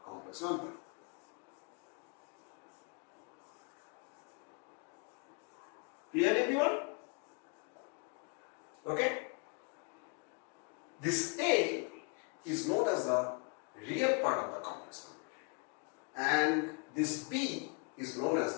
complex number. Clear everyone? Okay. This A is known as the real part of the complex number and this B is known as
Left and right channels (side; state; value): right; quieter; 34.9 dB